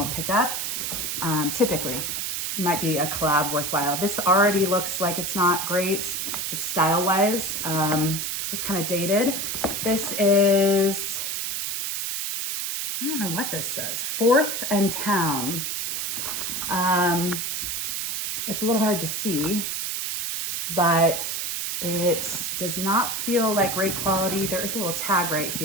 pick up. Typically, it might be a collab worthwhile. This already looks like it's not great, just style-wise, just kind of dated. This is, I don't know what this says, 4th and Town. It's a little hard to see, but it does not feel like great quality. There is a little tag right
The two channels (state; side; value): noise; right; hiss, 2 dB below the sound